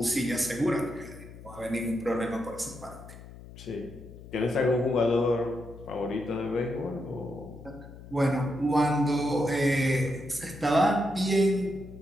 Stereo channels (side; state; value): left; noise; hum, 16 dB below the sound